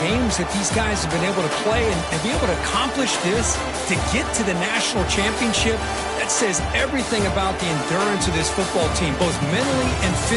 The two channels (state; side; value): identical; both; correlation 1.00